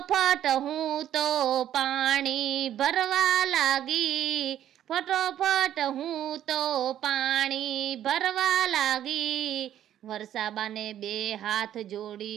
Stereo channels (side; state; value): left; quieter; 11.3 dB